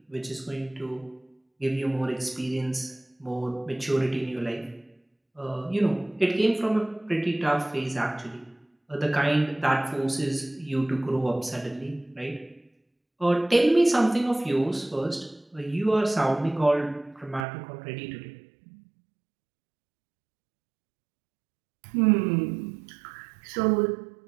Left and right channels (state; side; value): drops out; left; at 17.4 s